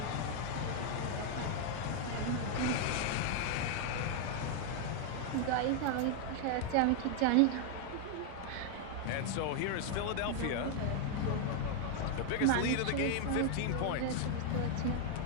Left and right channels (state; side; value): different; both; correlation 0.00